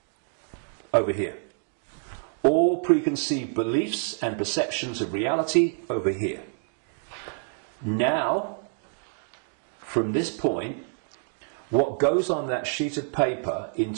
over here. All preconceived beliefs and perceptions of reality over here. Now, from this point, what goes on that sheet of paper in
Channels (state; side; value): silent; left; digital silence